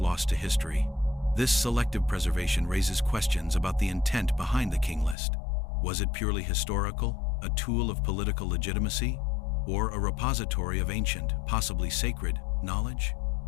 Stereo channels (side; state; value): right; drops out; at 5.2 s